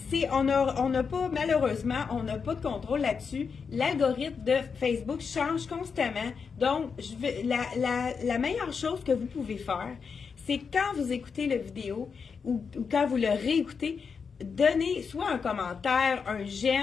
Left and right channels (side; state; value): right; quieter; 5.8 dB